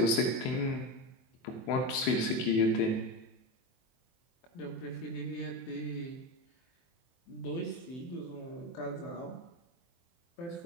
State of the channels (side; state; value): right; late; 23 ms